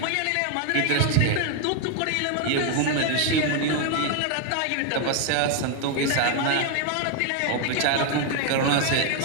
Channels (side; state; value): both; different; correlation 0.01